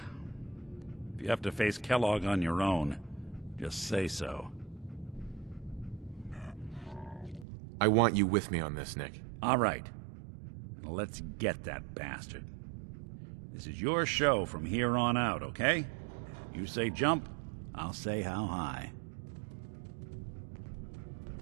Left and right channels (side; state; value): left; drops out; at 7.5 s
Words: If you have to face Kellogg on your own, just say so. I want you with me on this, Nick. All right. Now let's get that bastard. This is your show from here on out, okay? You say jump, I'll say how high.